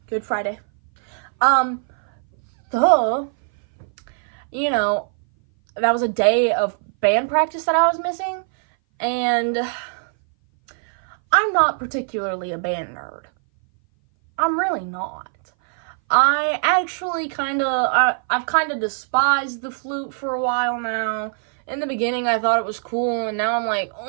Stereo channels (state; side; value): silent; left; 59 dB below the other